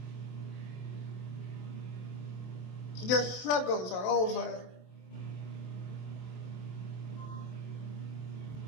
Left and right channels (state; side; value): late; right; 28 ms